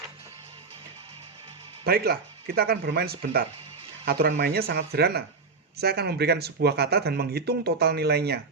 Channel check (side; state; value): left; quieter; 4.4 dB